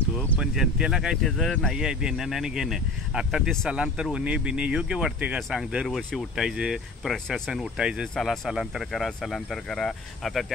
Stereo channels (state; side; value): quieter; right; 3.1 dB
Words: पण जनतेला काय त्याचं नाही आहे देणं आणि घेणं. आता ते स्थलांतर होणे बिणे योग्य वाटते का सांग? दरवर्षी उठायचं, प्रशासन उठायचं, चला स्थलांतर करा. आता